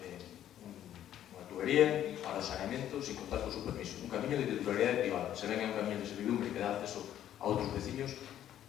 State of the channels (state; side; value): quieter; right; 11.3 dB